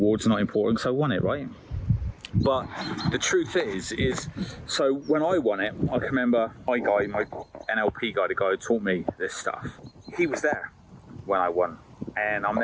not important, so I won it, right? But the truth is so when I won it, I can remember my NLP guy, the guy who taught me this stuff, he was there when I won. And I'm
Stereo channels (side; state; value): both; identical; correlation 1.00